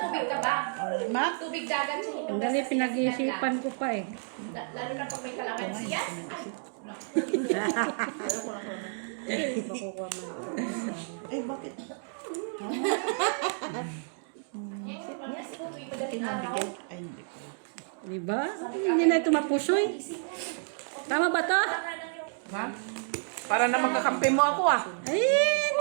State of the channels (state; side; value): silent; left; 58 dB below the other